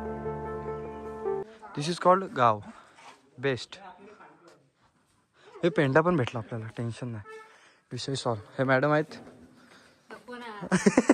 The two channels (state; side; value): identical; both; correlation 1.00